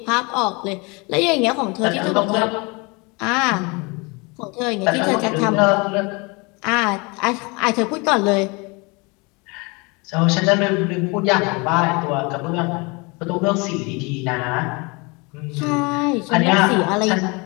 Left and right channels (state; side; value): quieter; right; 28.3 dB